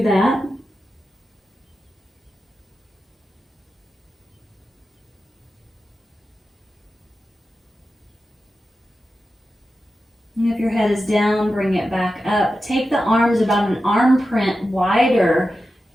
that. And if your head is down, bring it back up. Take the arms about an arm print wider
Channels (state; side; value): normal; both; correlation 0.92